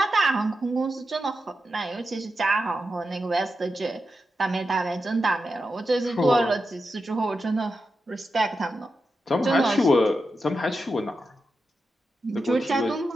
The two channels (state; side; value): normal; both; correlation 0.89